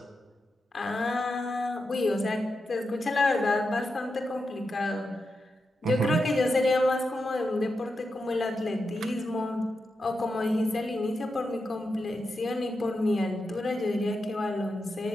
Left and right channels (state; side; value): normal; both; correlation 0.88